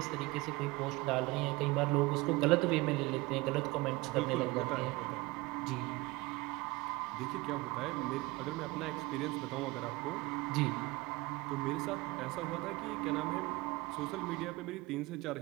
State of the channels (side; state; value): left; quieter; 22.2 dB